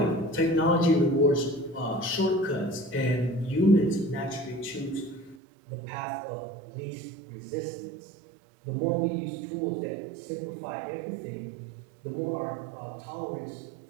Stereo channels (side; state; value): left; drops out; at 5.4 s